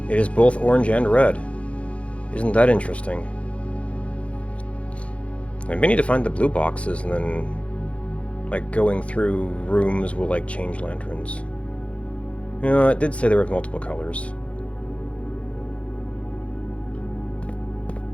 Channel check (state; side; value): late; right; 0.062 ms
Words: It is both orange and red. Isn't that interesting? I may need to find the blue boxes and then, like, going through rooms will, like, change lanterns. You know, it did say there were multiple colors.